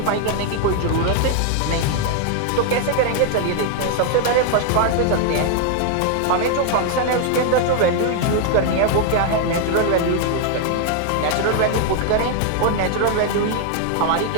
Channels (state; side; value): different; both; correlation 0.00